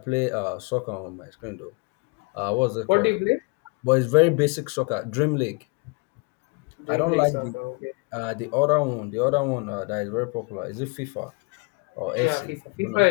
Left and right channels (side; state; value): right; quieter; 31.9 dB